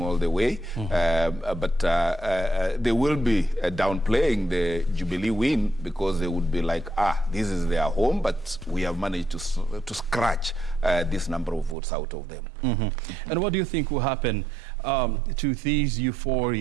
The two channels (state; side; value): drops out; left; at 11.8 s